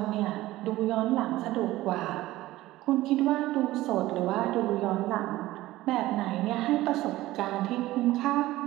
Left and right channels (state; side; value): quieter; left; 16.9 dB